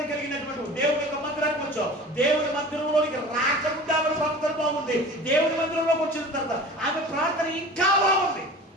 కలిగినటువంటి దేవుని యొక్క మందిరానికి వచ్చావు. దేవుని మందిరంలోనికి రాకముందు ఆమె ప్రవర్తన బాగుంది. దేవుని మందిరంలోకి వచ్చిన తర్వాత ఆమె ప్రార్థన ఇంకా బాగుంది.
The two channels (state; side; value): normal; both; correlation 0.39